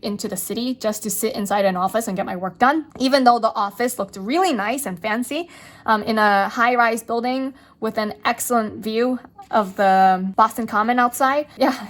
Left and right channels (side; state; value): both; identical; correlation 1.00